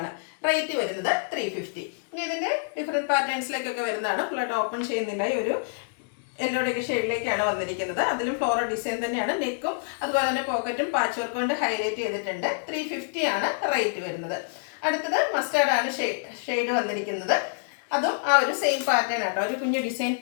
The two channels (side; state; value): right; silent; digital silence